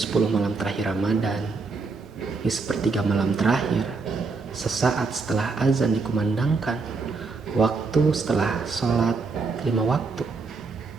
malam terakhir Ramadan, di sepertiga malam terakhir, sesaat setelah azan dikumandangkan, waktu setelah sholat 5 waktu,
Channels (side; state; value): left; quieter; 4.3 dB